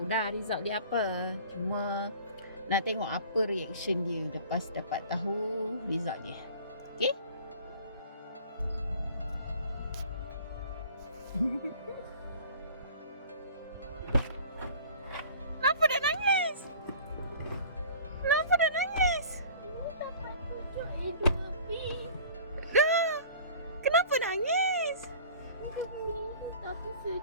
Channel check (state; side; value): inverted; both; correlation -0.45